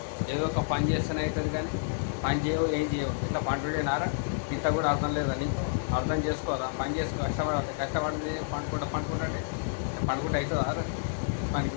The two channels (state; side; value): silent; right; digital silence